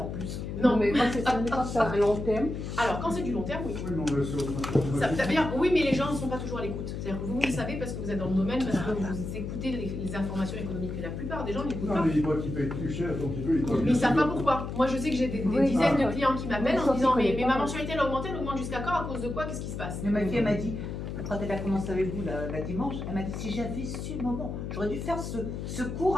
plus. Non. Mais quand c'est à long terme, Alors quand c'est du long terme, oui. Oui, non, mais c'est Ça veut dire, oui, mais les gens ne sont pas toujours à l'écoute. C'est-à-dire que vous le savez parce que vous êtes dans le domaine, parce que vous écoutez les informations économiques. Mais la plupart des gens n'écoutent Non, pas. mais il voit qu'il paye plus cher, donc il veut. Mais ils ne savent pas pourquoi. Moi, je sais que j'ai des Oui, dizaines de ah, clients qui m'appellent en sauf disant qu'ils mais connaissent ma pas. mensualité elle augmente jusqu'à quand? À cause de quoi? Qu'est-ce qui se passe? Mais ma fille, elle m'a dit, quand elle a commencé avec vous la dimanche, elle m'a dit si j'avais su le moment, j'aurais dû faire ce cours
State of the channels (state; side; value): noise; left; hum, 6 dB below the sound